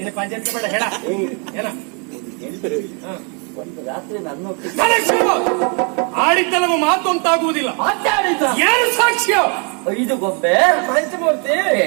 ಪಂಚಾಯತ್ ಬೇಡ ಹೇಳ. ಏನ ಒಂದು ರಾತ್ರಿ ನನ್ನೊಟ್ಟಿಗೆ ಆಡಿದ್ದ ನಮ್ಮ ಮಾತು ಅಂತಾಗುವುದಿಲ್ಲ. ಮಾತಾಡಿದ ಯಾರು ಸಾಕ್ಷ್ಯ? 5 ಗೊಂಬೆ ಪಂಚಮೂರ್ತಿ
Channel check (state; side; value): quieter; left; 36.9 dB